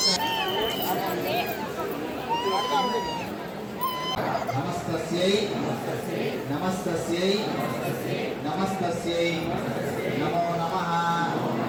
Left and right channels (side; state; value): both; identical; correlation 1.00